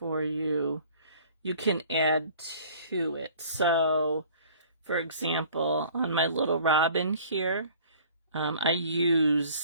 you. You can add to it. So, for example, on my little robin here, I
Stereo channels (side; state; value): both; inverted; correlation -0.51